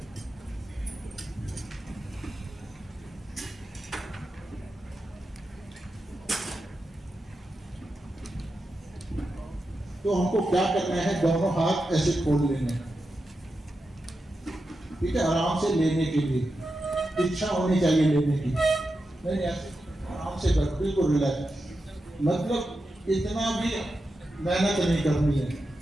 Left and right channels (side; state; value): both; normal; correlation 0.89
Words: तो हमको क्या करना है, दोनों हाथ ऐसे खोल लेने हैं, ठीक है? आराम से लेने के लिए इच्छा होनी चाहिए लेने की, नहीं ऐसे आराम से कर, बिल्कुल रिलैक्स, मतलब इतना भी मेहनत नहीं करनी है।